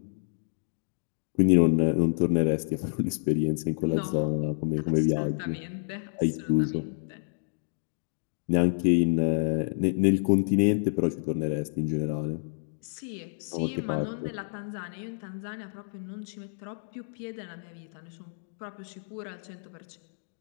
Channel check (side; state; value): right; silent; digital silence